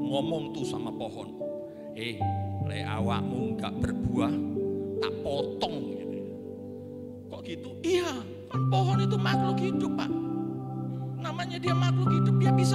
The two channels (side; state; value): both; identical; correlation 1.00